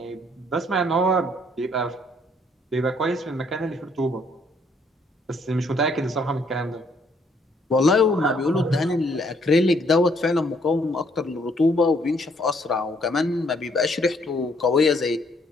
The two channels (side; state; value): both; normal; correlation 0.67